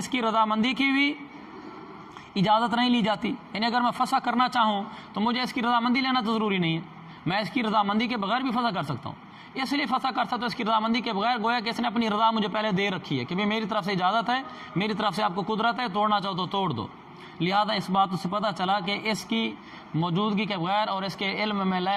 کی رضامندی کی بھی اجازت نہیں لی جاتی، یعنی اگر میں فسخ کرنا چاہوں تو مجھے اس کی رضامندی لینا تو ضروری نہیں ہے، میں اس کی رضامندی کے بغیر بھی فسخ کر سکتا ہوں۔ اس لیے فسخ کر سکتا ہوں اس کی رضامندی کے بغیر، گویا کہ اس نے اپنی رضا مجھے پہلے دے رکھی ہے کہ بھئی میری طرف سے اجازت ہے، میری طرف سے آپ کو قدرت ہے، توڑنا چاہو تو توڑ دو۔ لہذا اس بات سے پتہ چلا کہ اس کی موجودگی کے بغیر اور اس کے علم میں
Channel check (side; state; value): both; identical; correlation 1.00